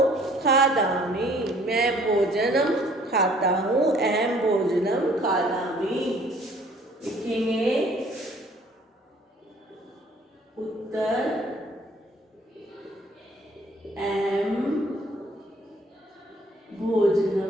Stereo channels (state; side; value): normal; both; correlation 0.57